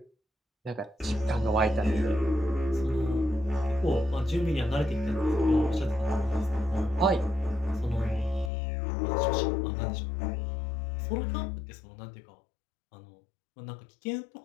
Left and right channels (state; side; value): drops out; right; at 8.5 s